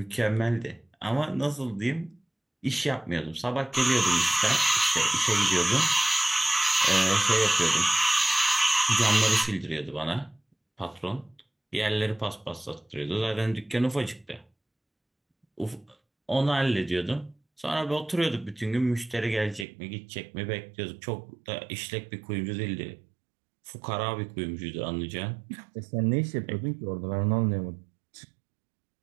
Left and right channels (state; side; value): drops out; left; at 19.7 s